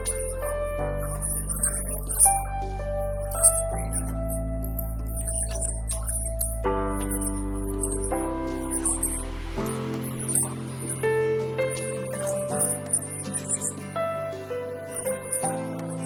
আমরা কি যাব, আমাদের যে ম্যাটেরিয়াল অ্যাপটা আছে না, আমরা কাজ করবো এইটার মধ্যে। ম্যাটেরিয়াল অ্যাপের মধ্যে আমরা কি বলে দিব, আমাদের রাউটিংটা বলে দিব। আর যখন আমরা এই রাউটিংটা ইউজ করবো তখন কি নেভিগেট করবো। তাহলে আমি বলছিলাম যে আমরা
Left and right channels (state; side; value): identical; both; correlation 1.00